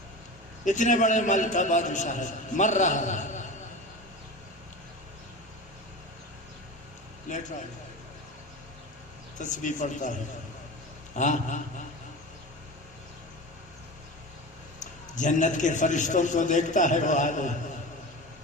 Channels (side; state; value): both; normal; correlation 0.29